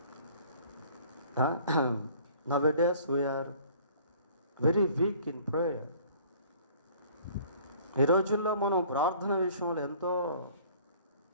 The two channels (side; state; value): both; inverted; correlation -0.53